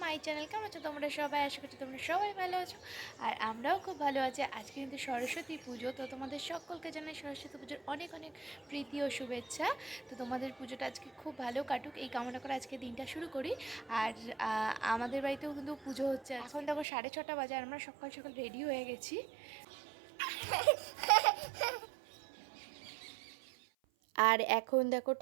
my channel. কেমন আছো তোমরা সবাই? আশা করছি তোমরা সবাই ভালো আছো, আর আমরাও খুব ভালো আছি। আজকে কিন্তু সরস্বতী পুজো, তো তোমাদের সকলকে জানাই সরস্বতী পুজোর অনেক অনেক প্রীতি ও শুভেচ্ছা। তো তোমাদের পুজোটা আজকে খুব ভালো কাটুক এই কামনা করে আজকে দিনটা শুরু করি। আর আমাদের বাড়িতেও কিন্তু পুজো হচ্ছে। এখন দেখো 6:30 বাজে, আর আমরা সকাল সকাল রেডি হয়ে গেছি। আর এখন দেখো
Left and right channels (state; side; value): drops out; left; at 16.9 s